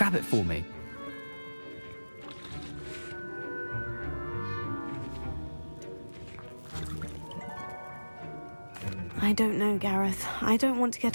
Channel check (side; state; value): both; inverted; correlation -1.00